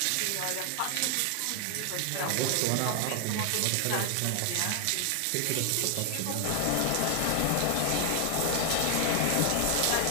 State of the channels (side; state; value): both; different; correlation 0.00